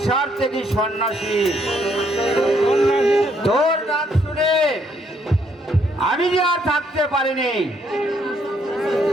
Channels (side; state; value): both; normal; correlation 0.70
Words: থেকে সন্ন্যাসী। তোর ডাক শুনে আমি যে আর থাকতে পারিনি।